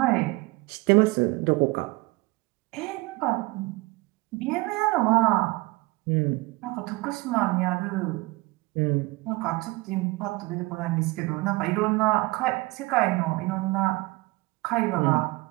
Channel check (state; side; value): quieter; left; 22.3 dB